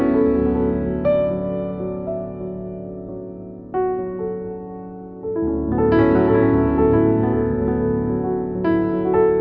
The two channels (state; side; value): identical; both; correlation 1.00